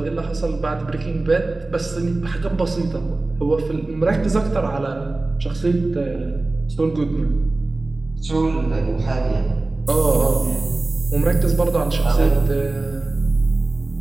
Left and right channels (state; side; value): quieter; left; 3.1 dB